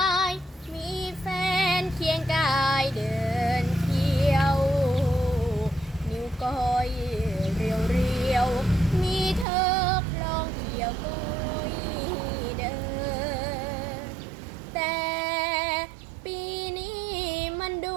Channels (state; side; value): drops out; left; at 9.5 s